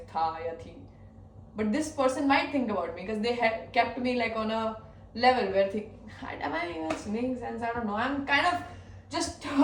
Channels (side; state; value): both; identical; correlation 1.00